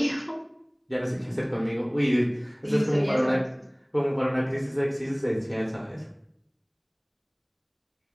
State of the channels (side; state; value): both; identical; correlation 1.00